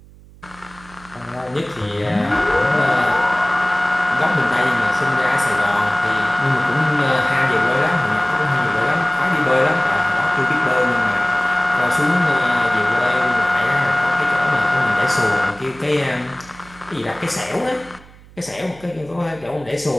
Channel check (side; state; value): right; noise; hum, 23 dB below the sound